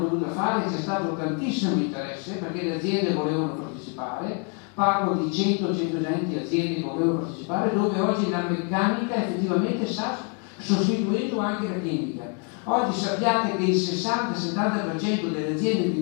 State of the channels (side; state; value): right; quieter; 37.6 dB